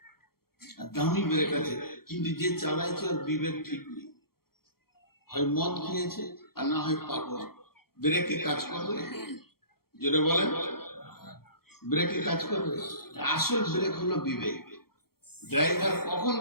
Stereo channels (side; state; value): right; late; 0.94 ms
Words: আর দামি ব্রেক আছে, কিন্তু যে চালাইছে ওর বিবেক ঠিক নেই। হয় মদ খেয়েছে আর না হয় পাগল। ব্রেকে কাজ করবে? যেটা বলেন ব্রেকে কাজ করবে? আসল ব্রেক হলো বিবেক। ড্রাইভার কখন